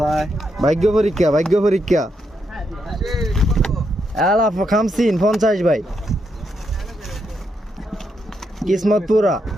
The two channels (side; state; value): both; normal; correlation 0.80